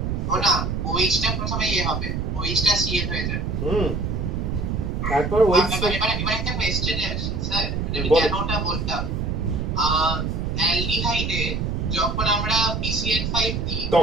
ও না, OH টা প্রথমে ইয়ে হবে, OH টা Cl হয়ে যাবে। তারপর ওই এবার একটা কোয়েশ্চেনে আসি স্যার, আমি কেন ওটা বলতাম, অ্যালডিহাইডে যখন আমরা PCl5 দিই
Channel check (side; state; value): right; noise; rumble, 1 dB below the sound